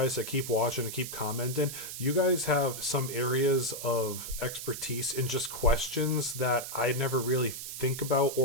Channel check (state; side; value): noise; right; hiss, 8 dB below the sound